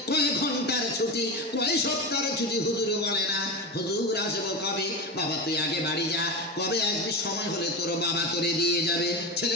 কয় ঘন্টার ছুটি, কয় সপ্তাহের ছুটি হুজুর বলে না। হুজুর আসবো কবে? বাবা তুই আগে বাড়ি যা, কবে আসবি? সময় হলে তোর বাবা তোরে দিয়ে যাবে।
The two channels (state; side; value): normal; both; correlation 0.21